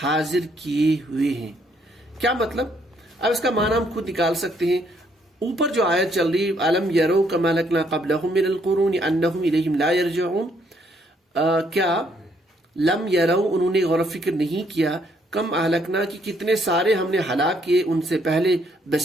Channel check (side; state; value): both; normal; correlation 0.70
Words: حاضر کیے ہوئے ہیں. کیا مطلب؟ اب اس کا معنی ہم خود نکال سکتے ہیں. اوپر جو آیت چل رہی أَلَمْ يَرَوْا كَمَا أَهْلَكْنَا قَبْلَهُمْ مِنَ الْقُرُونِ أَنَّهُمْ إِلَيْهِمْ لَا يَرْجِعُونَ, کیا لم یرو, انہوں نے غور و فکر نہیں کیا, کم اہلکنا کی کتنے سارے ہم نے ہلاک کیے ان سے پہلے